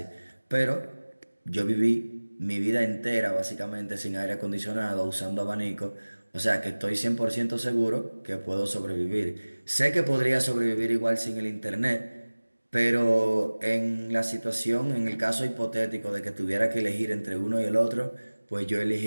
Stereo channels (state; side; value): inverted; both; correlation -1.00